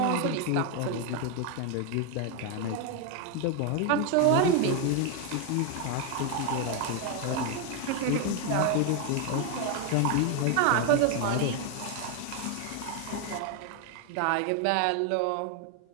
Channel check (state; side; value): different; both; correlation 0.01